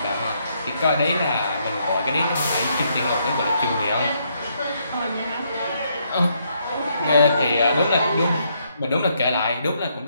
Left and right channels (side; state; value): both; inverted; correlation -0.74